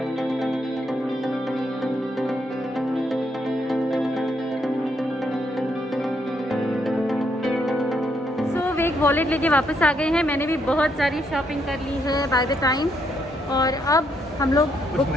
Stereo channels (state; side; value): normal; both; correlation 0.75